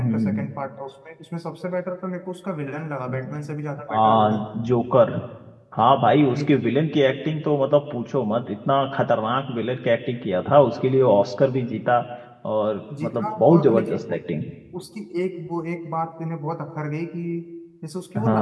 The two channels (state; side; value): identical; both; correlation 1.00